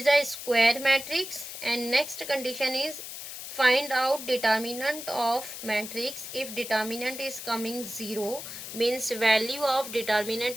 a square matrix, and next condition is find out determinant of matrix. If determinant is coming 0, means value of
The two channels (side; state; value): left; noise; hiss, 9 dB below the sound